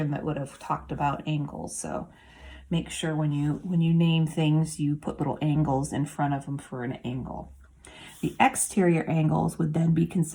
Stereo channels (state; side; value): identical; both; correlation 1.00